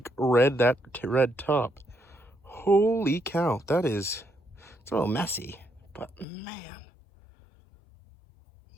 red top. Holy cow, it's a little messy, but man.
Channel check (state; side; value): drops out; right; at 6.2 s